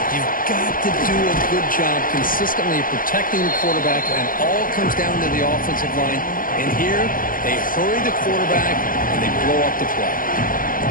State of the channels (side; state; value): right; late; 0.40 ms